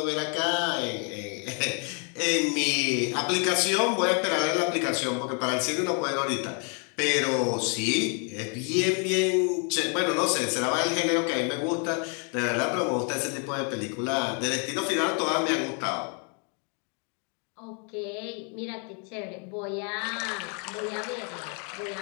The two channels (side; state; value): right; quieter; 38.9 dB